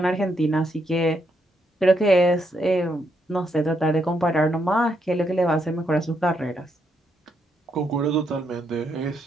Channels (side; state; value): both; normal; correlation 0.78